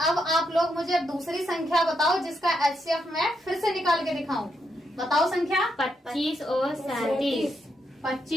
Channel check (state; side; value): normal; both; correlation 0.80